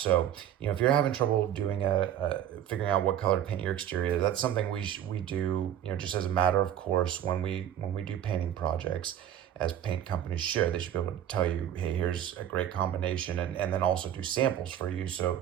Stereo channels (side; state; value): left; quieter; 10.6 dB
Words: if you're having trouble doing figuring out what color to paint your exterior, that's something we do just as a matter of course when we do painting projects, as paint companies should. They should be able to tell you, hey, here's a great combination, and then also do samples for you so